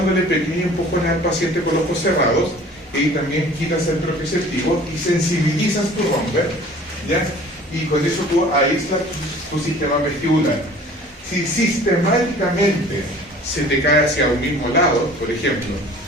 pequeños empujones al paciente con los ojos cerrados, y también quitas el propioceptivo y sensibilizas tu Romberg, ¿ya? Y con eso tú aíslas tu sistema vestibular. Si sistemáticamente se te cae hacia un mismo lado, por ejemplo,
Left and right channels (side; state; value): both; normal; correlation 0.48